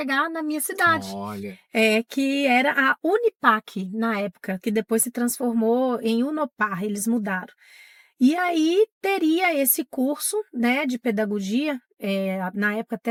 na minha cidade, Olha. que era a Unipac, na época, que depois se transformou em Unopar, eles mudaram. E aí teria esse curso, né, de pedagogia, na época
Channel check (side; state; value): both; identical; correlation 1.00